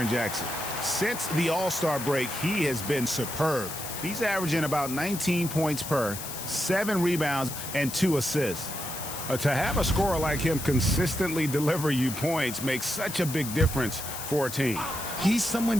Jackson. Since the All-Star break, he has been superb. He's averaging about 19 points per, 7 rebounds, and 2 assists. To have a scorer like him consistently deliver you points makes such a big difference for a team. He's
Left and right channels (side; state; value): left; noise; hiss, 8 dB below the sound